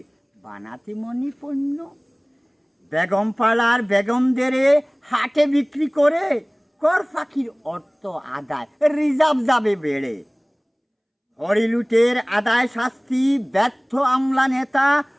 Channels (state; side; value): identical; both; correlation 1.00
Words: বানাতে মনি পণ্য। বেগম পাড়ার বেগমদের হাটে বিক্রি করে কর ফাঁকির অর্থ আদায় রিজার্ভ যাবে বেড়ে। হরিলুটের আদায় শাস্তি ব্যর্থ আমলা নেতা,